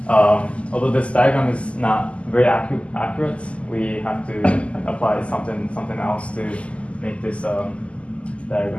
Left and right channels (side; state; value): right; late; 0.059 ms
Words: Although this diagram is not very accurate, we have to apply something else to make this